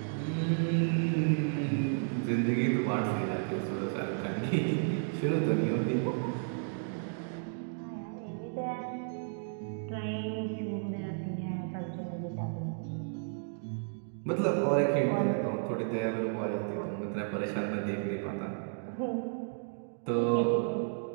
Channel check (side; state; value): left; silent; digital silence